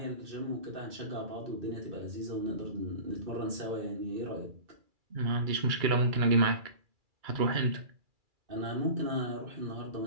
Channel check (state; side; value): late; left; 2.3 ms